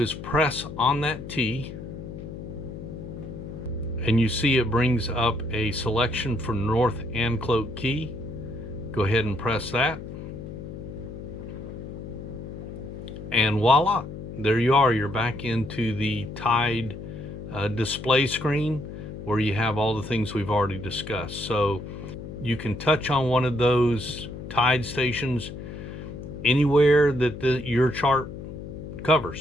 is press on that T, and you see it brings up a selection for North Anclote Key. Go ahead and press that, and voila, there you are. You're back into the tide display screen where you have all the things we've already discussed. So you can touch on one of those tide stations anywhere that your chart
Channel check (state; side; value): noise; left; hum, 10 dB below the sound